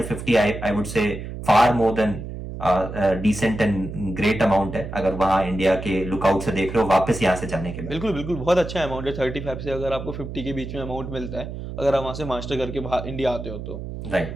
to 50 I would say far more than decent and great amount है अगर वहाँ इंडिया के लुकआउट से देख रहे हो वापस यहाँ से जाने के बाद। बिल्कुल बिल्कुल, बहुत अच्छा अमाउंट है 35 से अगर आपको 50 के बीच में अमाउंट मिलता है अगर आप वहाँ से मास्टर करके बाहर इंडिया आते हो तो।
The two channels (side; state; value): right; noise; hum, 8 dB below the sound